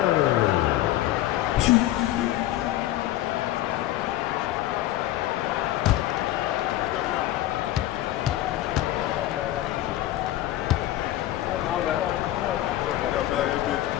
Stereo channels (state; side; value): quieter; right; 14.4 dB